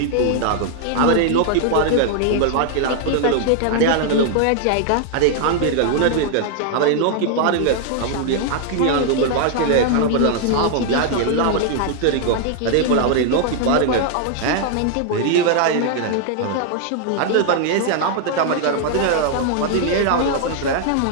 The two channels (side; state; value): both; different; correlation 0.00